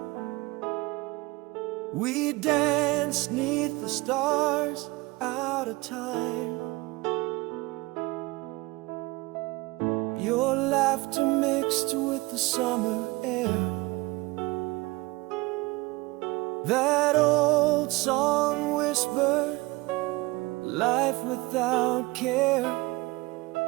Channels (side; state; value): left; quieter; 22.6 dB